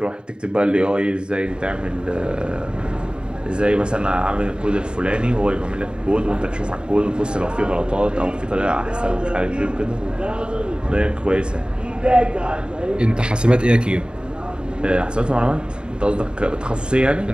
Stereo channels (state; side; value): late; left; 0.050 ms